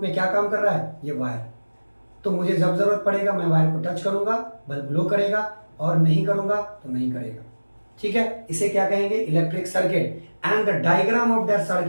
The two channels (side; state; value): both; inverted; correlation -1.00